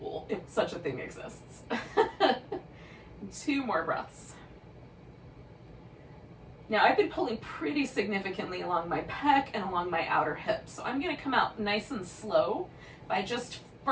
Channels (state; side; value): identical; both; correlation 1.00